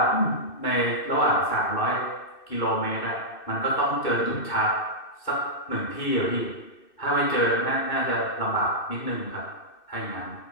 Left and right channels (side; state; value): right; late; 2.6 ms